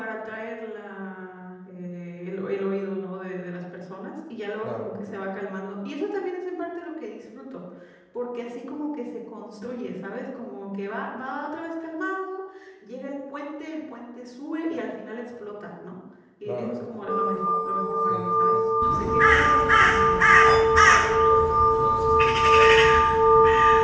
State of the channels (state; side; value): identical; both; correlation 1.00